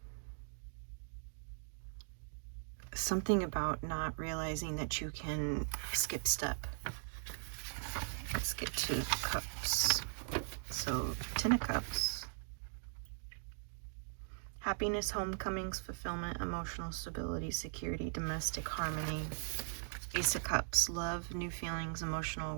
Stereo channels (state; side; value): silent; left; digital silence